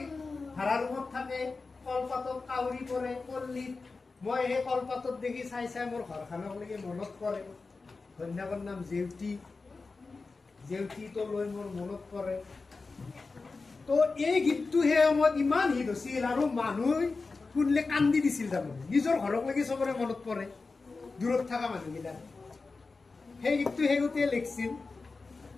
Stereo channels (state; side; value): quieter; right; 4.0 dB